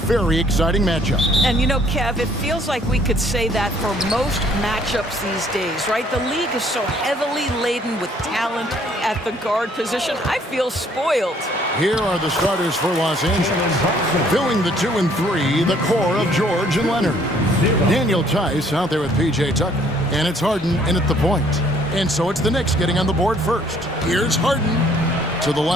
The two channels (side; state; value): both; normal; correlation 0.62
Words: exciting matchup. And you know, Kev, it feels like we could say that for most matchups these days, right? The league is so heavily laden with talent at the guard position. I feel spoiled. Here are the starters for Los Angeles. Filling the 2 and 3, the core of George and Leonard. Daniel Tice out there with P.J. Tucker. And it's Harden in at the point. And so it's the Knicks getting on the board first. Here's Harden to the